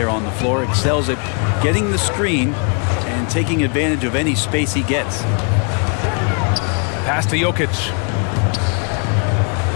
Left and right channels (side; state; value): right; quieter; 37.7 dB